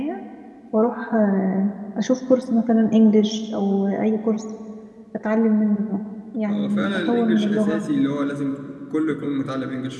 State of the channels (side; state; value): both; identical; correlation 1.00